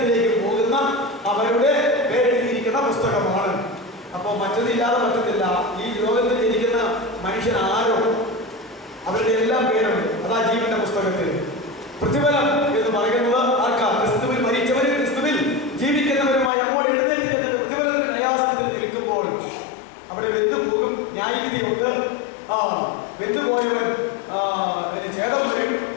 പോകുന്ന അവരുടെ പേരെഴുതിയിരിക്കുന്ന പുസ്തകമാണ്. അപ്പോൾ മറ്റതില്ലാതെ പറ്റത്തില്ല. ഈ ലോകത്തിൽ ഇരിക്കുന്ന മനുഷ്യൻ ആരോ അവരുടെ എല്ലാം പേരുണ്ട്. അതാ ജീവന്റെ പുസ്തകത്തിൽ. പ്രതിഫലം എന്ന് പറയുന്നത് ആർക്കാ? ക്രിസ്തുവിൽ മരിച്ചവരും ക്രിസ്തുവിൽ ജീവിക്കുന്നവരുമായി അങ്ങോട്ട് എഴുന്നേറ്റ് ചെന്നിട്ട് പ്രതിഫലത്തിന് ന്യായാസനത്തിൽ നിൽക്കുമ്പോൾ അവിടെ വെന്തുപോകും, ന്യായവിധിയുണ്ട്. വെന്തുപോയവൻ ഛേദം വരും,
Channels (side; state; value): right; drops out; at 16.5 s